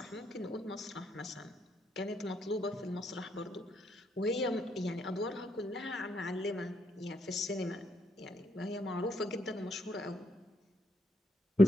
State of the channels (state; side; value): normal; both; correlation 0.75